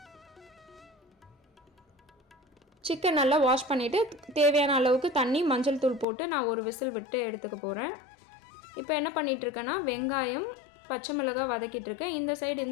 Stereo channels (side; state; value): right; drops out; at 6.1 s